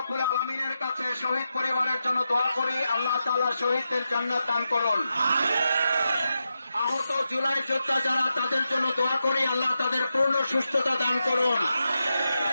আলামিনের কাছে শহীদ পরিবারের জন্য দোয়া করি, আল্লাহ তাআলা শহীদদের জান্নাত দান করুন। আহত জুলাই যোদ্ধা যারা, তাদের জন্য দোয়া করি, আল্লাহ তাদের পূর্ণ সুস্থতা দান করুন।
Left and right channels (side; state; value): both; inverted; correlation -0.88